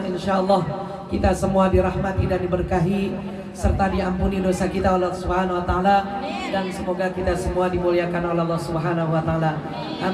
insyaallah kita semua dirahmati dan diberkahi serta diampuni dosa kita oleh Allah Subhanahu wa taala, dan semoga kita semua dimuliakan oleh Allah Subhanahu wa taala.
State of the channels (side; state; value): both; identical; correlation 1.00